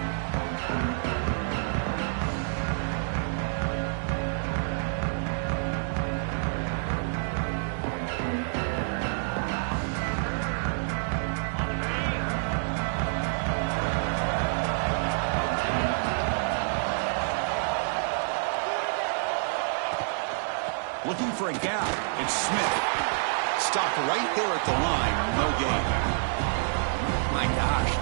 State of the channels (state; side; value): silent; left; digital silence